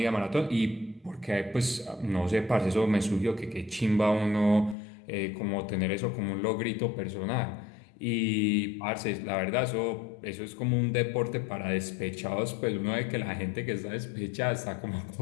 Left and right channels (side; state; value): right; drops out; at 4.8 s